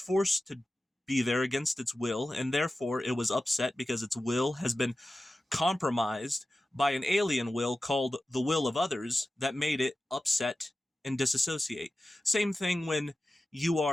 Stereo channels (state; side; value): normal; both; correlation 0.94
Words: to be there against its will, and therefore it was upset because its will has been compromised by an alien will called the will of others that made it upset and disassociate. Same thing when you